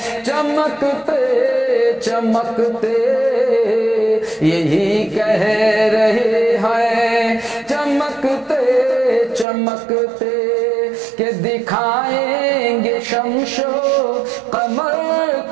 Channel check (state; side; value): drops out; left; at 9.5 s